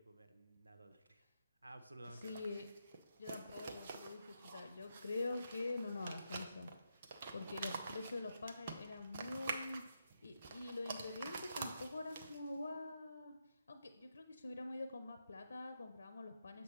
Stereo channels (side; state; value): both; inverted; correlation -0.83